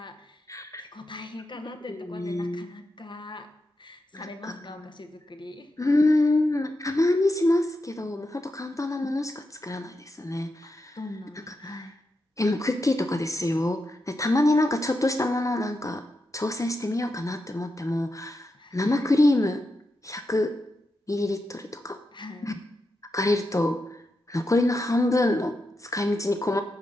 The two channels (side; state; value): both; normal; correlation 0.87